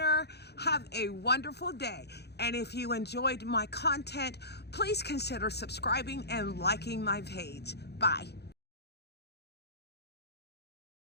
Have a wonderful day. And if you enjoyed my content, please consider subscribing and liking my page. Bye.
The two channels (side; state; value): right; late; 0.48 ms